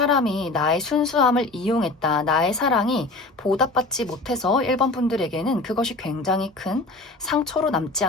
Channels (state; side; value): quieter; right; 3.1 dB